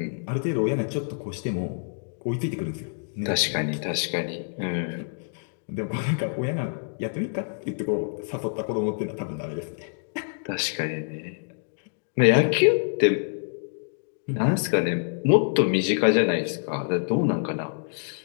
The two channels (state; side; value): silent; right; digital silence